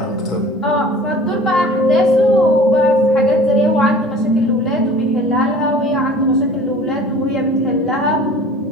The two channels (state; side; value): normal; both; correlation 0.45